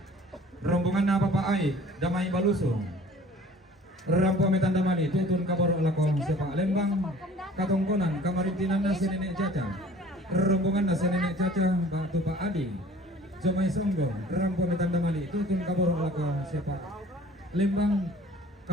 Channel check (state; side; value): normal; both; correlation 0.49